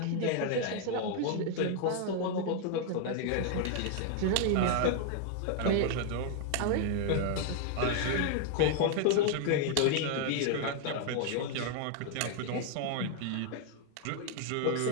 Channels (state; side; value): different; both; correlation 0.00